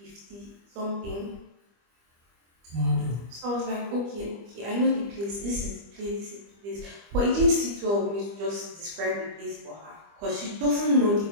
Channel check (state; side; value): late; left; 25 ms